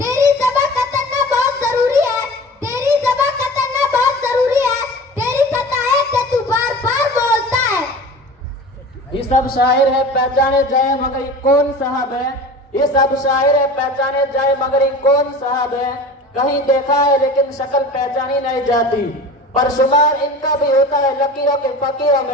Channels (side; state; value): both; normal; correlation 0.37